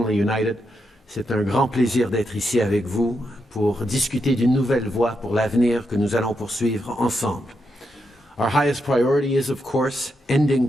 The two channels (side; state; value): both; normal; correlation 0.83